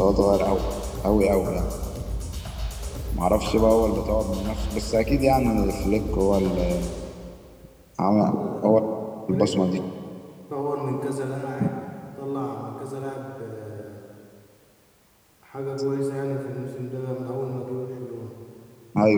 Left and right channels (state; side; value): identical; both; correlation 1.00